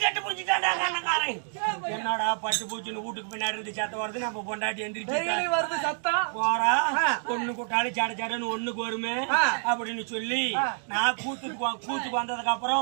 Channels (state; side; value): silent; left; digital silence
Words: கட்டு பூச்சிட்டான் அண்ணக்காரன் என்னடா பட்டு பூச்சின்னு வீட்டுக்கு பின்னாடி இருந்து சத்தம் வருது நம்ம பொண்டாட்டி எந்திரிச்சு போறா ஒண்ணு கூட்டாலும் சட சடன்னு ஒண்ணுக்கு வருமே அப்படின்னு சொல்லி நான் கூத்துக்கு வந்ததுக்கு